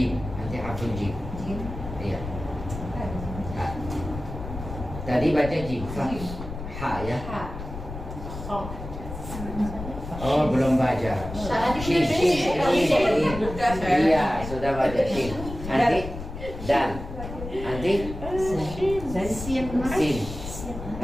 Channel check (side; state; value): left; noise; rumble, 9 dB below the sound